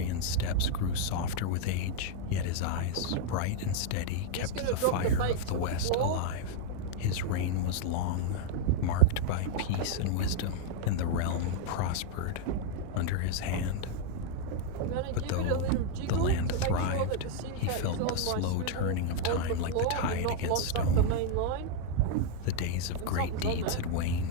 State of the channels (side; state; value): both; different; correlation 0.00